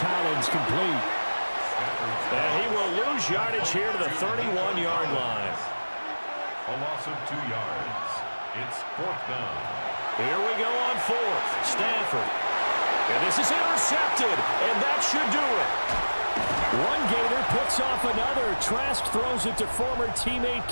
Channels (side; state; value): both; inverted; correlation -1.00